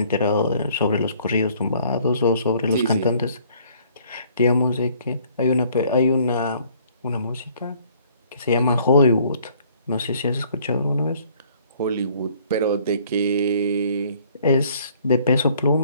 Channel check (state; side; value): inverted; both; correlation -0.59